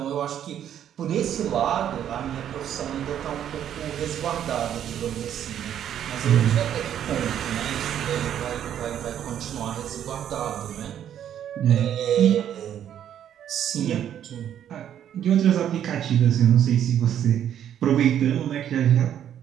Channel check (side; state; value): left; quieter; 10.1 dB